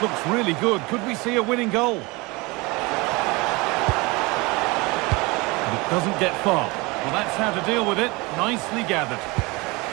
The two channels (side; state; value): left; quieter; 24.8 dB